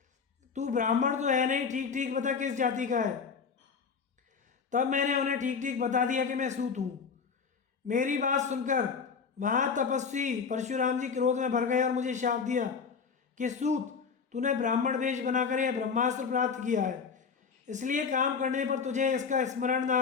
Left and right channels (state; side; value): quieter; right; 5.8 dB